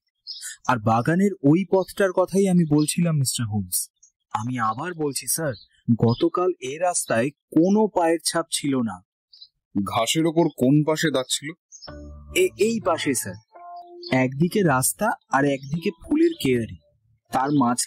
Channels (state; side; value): identical; both; correlation 1.00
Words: আর বাগানের ওই পথটার কথাই আমি বলছিলাম মিস্টার হোমস। আমি আবার বলছি স্যার, গতকাল এ রাস্তায় কোনো পায়ের ছাপ ছিল না। ঘাসের ওপর কোন পাশে দাগ ছিল? এই পাশে স্যার। একদিকে রাস্তা আর একদিকে ফুলের কেয়ারি, তার